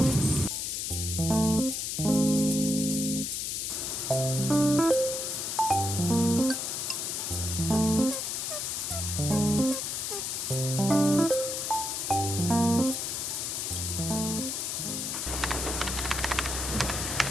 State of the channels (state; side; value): noise; left; hiss, 2 dB below the sound